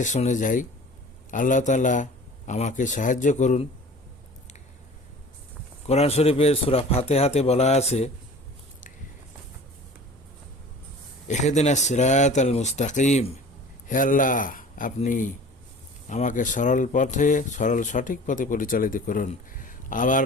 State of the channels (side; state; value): both; normal; correlation 0.43